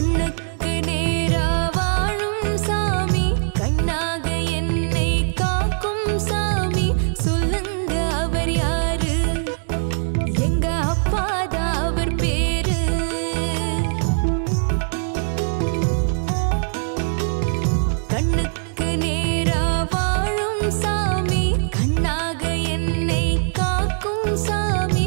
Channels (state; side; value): silent; left; digital silence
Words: நேரா வாழும் சாமி, கண்ணாக என்னை காக்கும் சாமி, சொல்லுங்க அவர் யாரு? எங்க அப்பாதான்.